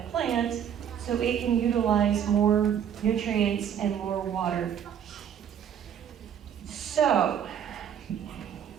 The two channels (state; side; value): quieter; left; 8.9 dB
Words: plant so it can utilize more nutrients and more water. So,